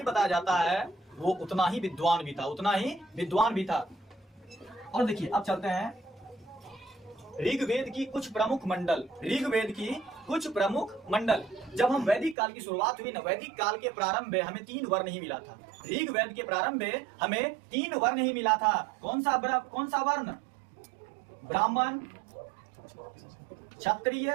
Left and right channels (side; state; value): left; drops out; at 12.4 s